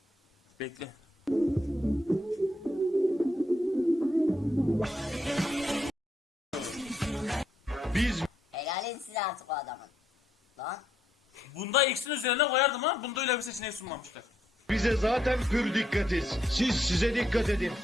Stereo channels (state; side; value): normal; both; correlation 0.76